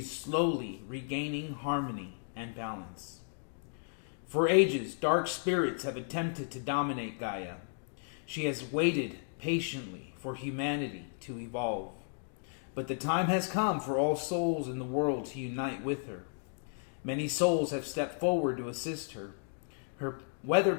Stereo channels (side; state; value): right; silent; digital silence